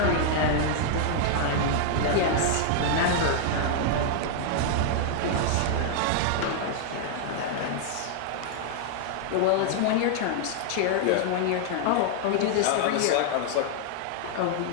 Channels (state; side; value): different; both; correlation -0.01